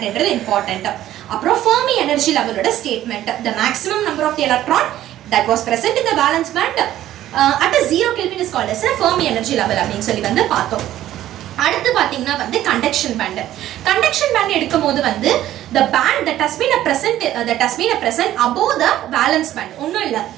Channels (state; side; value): quieter; left; 13.2 dB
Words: என்றது important. அப்புறம் Fermi energy level ஓட statement, the maximum number of the electron that was present in the valence band at a 0 Kelvin is called as a Fermi energy level அப்படின்னு சொல்லி வந்து பார்த்தோம். அடுத்து பாத்தீங்கன்னா வந்து கண்டக்ஷன் பேண்ட். கண்டக்ஷன் பேண்ட் எடுக்கும்போது வந்து the band that has been present above the valence band. ஒண்ணும் இல்ல,